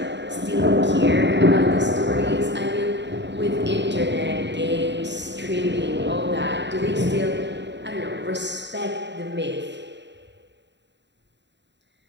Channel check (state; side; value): late; left; 0.52 ms